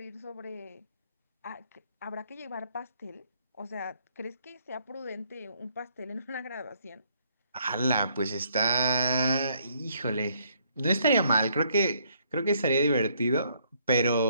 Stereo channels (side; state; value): both; inverted; correlation -0.69